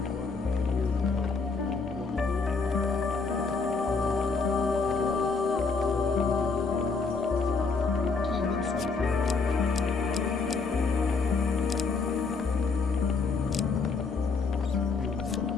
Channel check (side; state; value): right; quieter; 4.5 dB